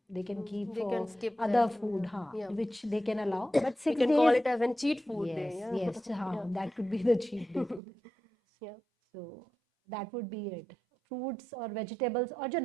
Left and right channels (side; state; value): left; drops out; at 7.8 s